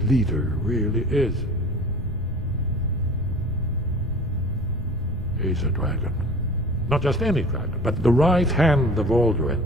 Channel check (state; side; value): normal; both; correlation 0.42